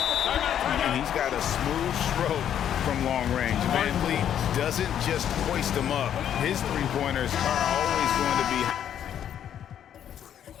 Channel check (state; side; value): quieter; right; 9.8 dB